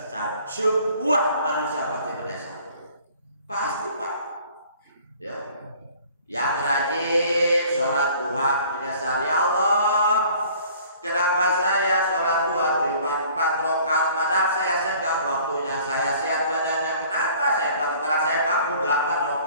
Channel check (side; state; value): both; inverted; correlation -0.52